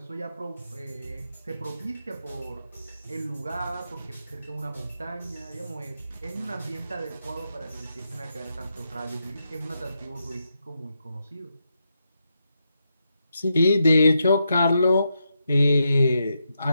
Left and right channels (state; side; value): inverted; both; correlation -0.84